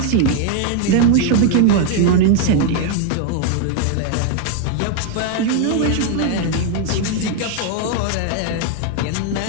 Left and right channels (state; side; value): different; both; correlation 0.01